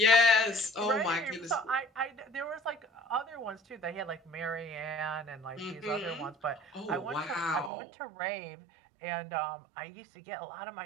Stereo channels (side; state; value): left; drops out; at 7.7 s